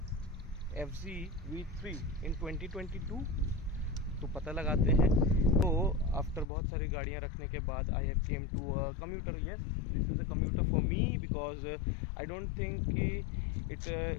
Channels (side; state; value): right; drops out; at 6.5 s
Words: FZ V3 इन 2022। तो पता लगाते हैं। तो आफ्टर बहुत सारी गाड़ियाँ रखने के बाद I have came to a commuter. Yes, this is a commuter for me because I don't think कि